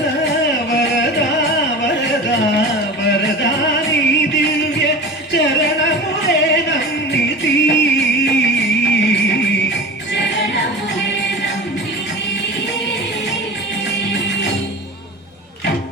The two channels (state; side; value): normal; both; correlation 0.32